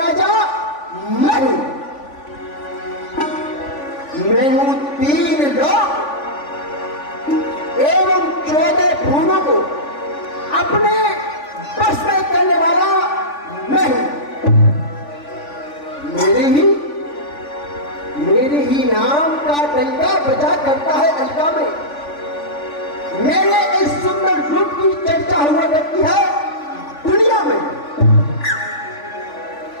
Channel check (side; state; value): right; late; 3.5 ms